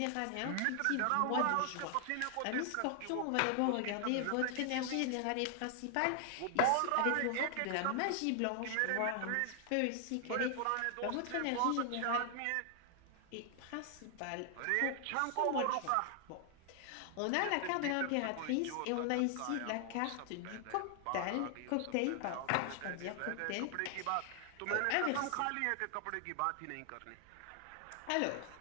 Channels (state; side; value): different; both; correlation 0.00